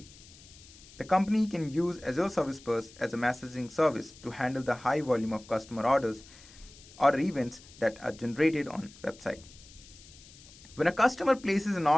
The company can use Azure Service Bus as a messaging service to handle the high volume of customer orders or events that are generated on website. When a customer places an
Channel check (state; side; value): noise; left; hiss, 21 dB below the sound